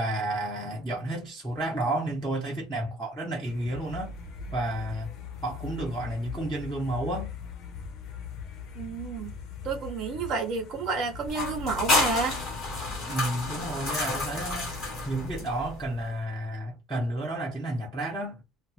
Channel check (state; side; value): normal; both; correlation 0.51